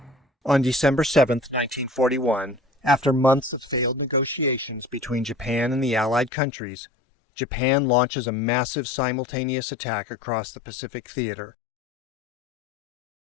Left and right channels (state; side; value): drops out; right; at 6.3 s